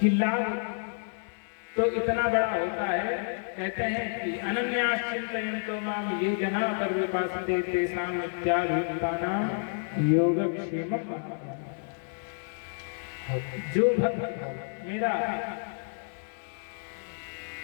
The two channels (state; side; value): silent; right; digital silence